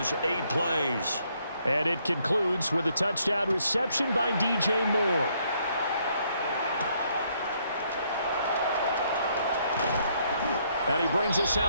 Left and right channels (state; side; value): inverted; both; correlation -0.70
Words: 8 plays. And it concludes with a touchdown reception by DJ Moore. And he brings us